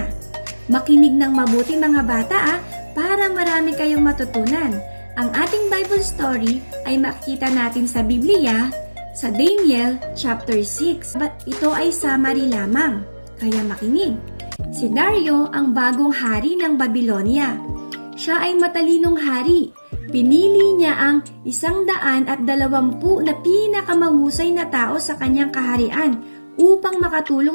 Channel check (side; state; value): both; inverted; correlation -1.00